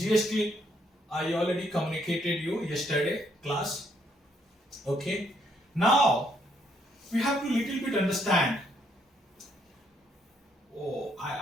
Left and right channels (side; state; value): both; normal; correlation 0.71